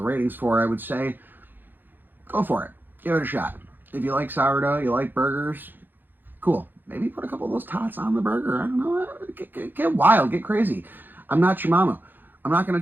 ratings for, I would say, go for it. Give it a shot. If you like sourdough, you like burgers, cool. Maybe put a couple of those tots on the burger. I don't know. Get wild. Get crazy. I'm not your mama. I'm not going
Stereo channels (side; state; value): left; late; 0.091 ms